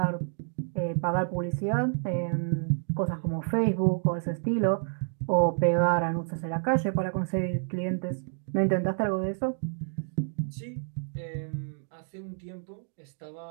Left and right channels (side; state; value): left; silent; 58 dB below the other